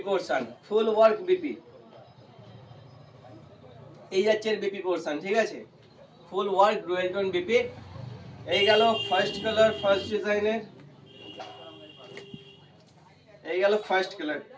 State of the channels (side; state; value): both; identical; correlation 1.00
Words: পোরশন, ফুল ওয়ার্ক বিপি। এই যাচ্ছে বিপি পোরশন, ঠিক আছে, ফুল ওয়ার্ক ডুয়েল টোন বিপি। এই গেল ফার্স্ট কালার, ফার্স্ট ডিজাইনের। এই গেল ফার্স্ট কালার।